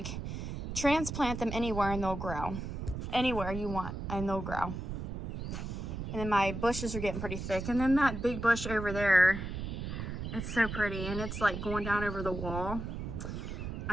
transplant them anywhere and they'll grow. Anywhere you want and they'll grow. And then my bushes are getting pretty thick. And then that big bush over there, it's so pretty. And it's like going down over the wall.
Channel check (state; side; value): noise; right; rumble, 5 dB below the sound